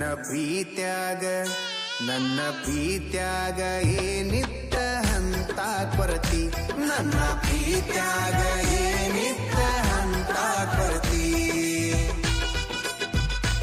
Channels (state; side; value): identical; both; correlation 1.00